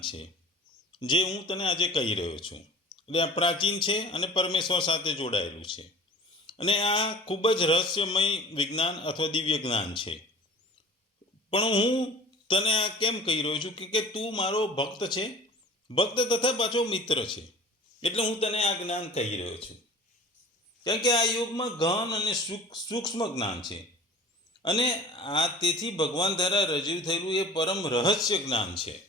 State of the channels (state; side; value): normal; both; correlation 0.42